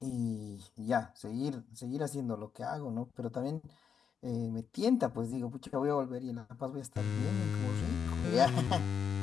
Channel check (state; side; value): quieter; right; 7.1 dB